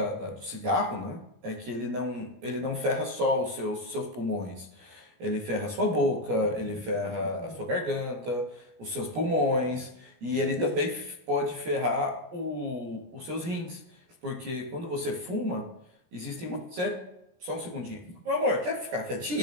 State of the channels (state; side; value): late; left; 17 ms